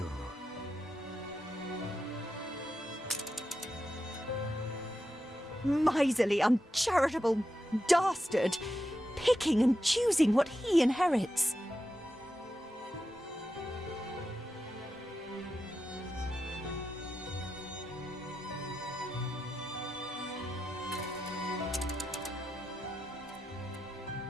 Miserly, uncharitable dastard! Picking and choosing what he inherits.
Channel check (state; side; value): normal; both; correlation 0.88